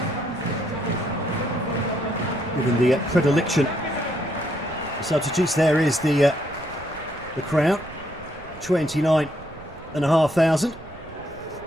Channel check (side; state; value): right; noise; rumble, 18 dB below the sound